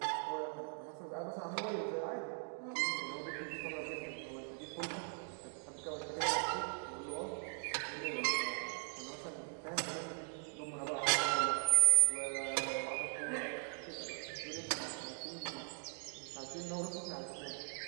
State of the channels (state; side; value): silent; left; 51 dB below the other